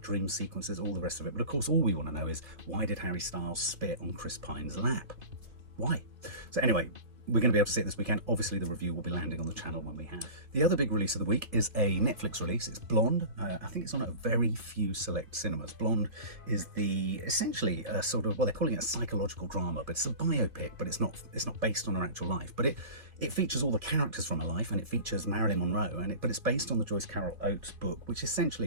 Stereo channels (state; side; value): late; left; 2.7 ms